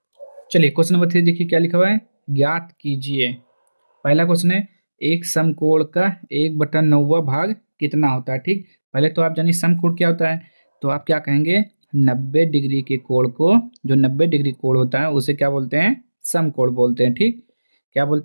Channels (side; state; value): both; inverted; correlation -1.00